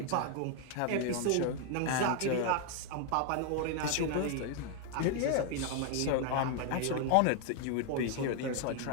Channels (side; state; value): both; different; correlation 0.00